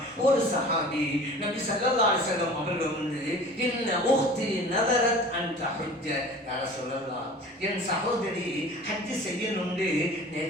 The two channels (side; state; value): both; normal; correlation 0.42